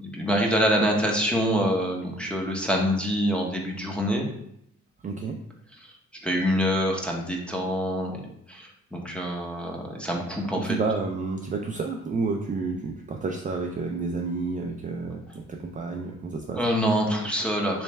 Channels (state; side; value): normal; both; correlation 0.58